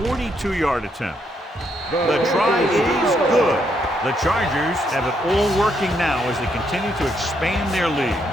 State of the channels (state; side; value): normal; both; correlation 0.76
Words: 42-yard attempt. The try is good. The Chargers have it all working now as they continue to expand their